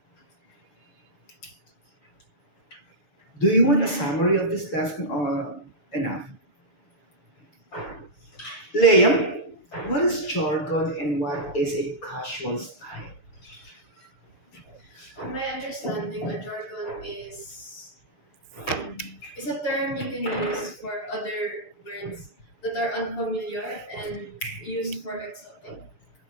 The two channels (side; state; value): right; late; 6.8 ms